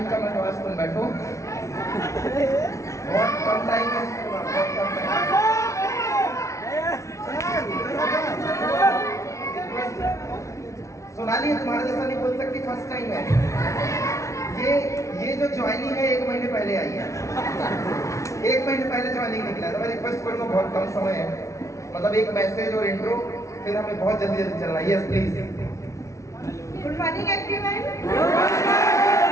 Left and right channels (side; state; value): right; late; 0.14 ms